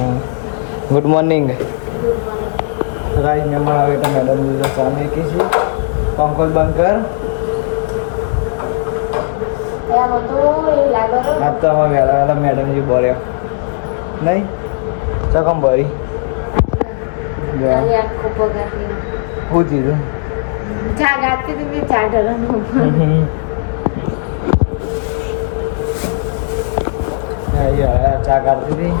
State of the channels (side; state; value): right; silent; digital silence